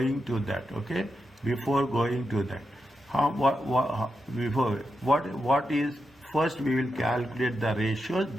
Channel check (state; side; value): normal; both; correlation 0.87